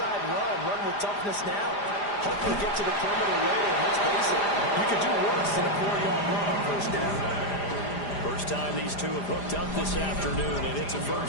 run with toughness now. Hopefully get to the perimeter later. Let's face it, you could do worse than a 4-yard run on first down. First time these two have hooked up this afternoon, and it's a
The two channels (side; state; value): right; late; 4.9 ms